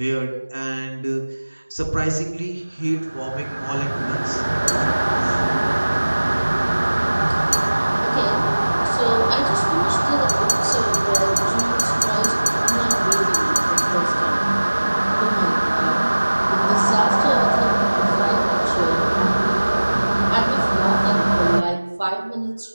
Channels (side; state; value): both; inverted; correlation -1.00